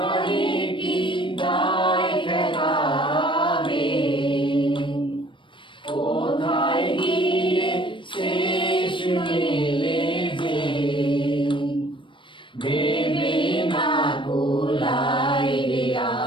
কি দায় দেখাবে, কোথায় গিয়ে শেষ মেলে যে, ভেবে না কুলাই রে,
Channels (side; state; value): right; late; 0.24 ms